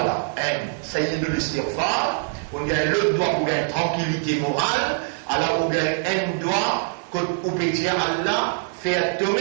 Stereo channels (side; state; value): left; silent; digital silence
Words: là? Un, sayyidul istighfar, on gagne l'autre doigt pour gagner tranquillité morale, alors on gagne un doigt, qu'on peut dire Allah, fais